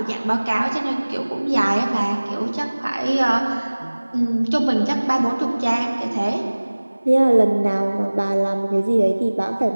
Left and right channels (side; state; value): both; inverted; correlation -1.00